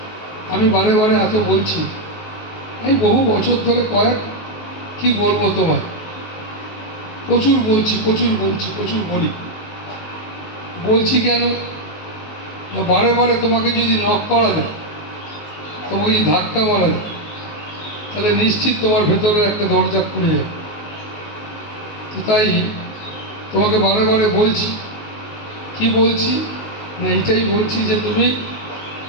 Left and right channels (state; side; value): late; right; 19 ms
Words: আমি বারে বারে এত বলছি, আমি বহু বছর ধরে কি বলবো তোমায়, প্রচুর বলছি কেন না, বারে বারে তোমাকে যদি নক করা যায়, তোমাকে যদি ধাক্কা মারা যায়, তাহলে নিশ্চিত তোমার ভেতরে একটা দরজা খুলে যাবে। তো তাই তোমাকে বারে বারে বলছি, কি বলছি না, এইটাই বলছি যে তুমি